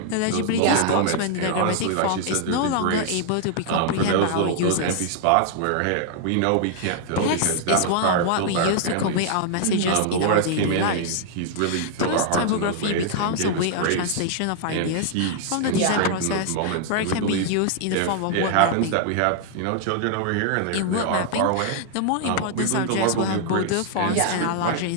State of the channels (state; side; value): different; both; correlation -0.01